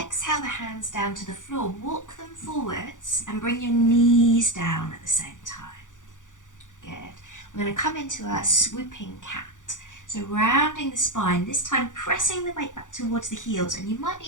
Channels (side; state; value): right; late; 0.87 ms